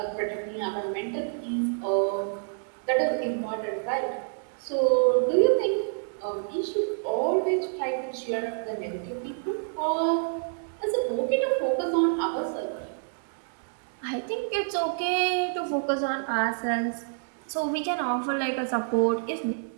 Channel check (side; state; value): left; silent; digital silence